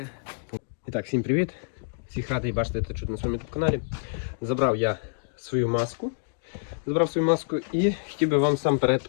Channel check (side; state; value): right; silent; digital silence